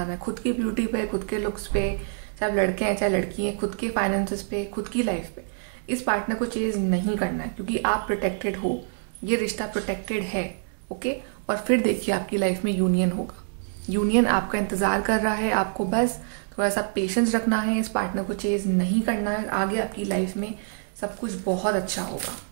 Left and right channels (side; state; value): left; silent; digital silence